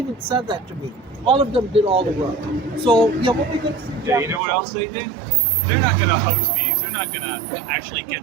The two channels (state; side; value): drops out; left; at 4.4 s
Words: said that to me. All of them did all the work. So yeah, what we could. Yeah, you know what else they did? They're not going to host meetings. They're not going to actually